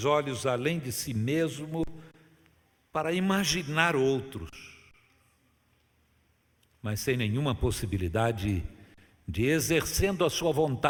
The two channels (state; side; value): identical; both; correlation 1.00